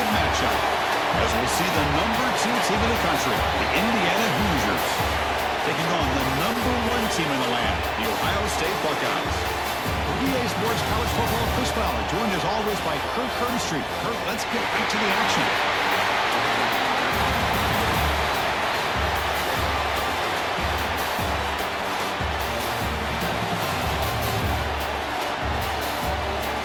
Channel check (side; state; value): both; identical; correlation 1.00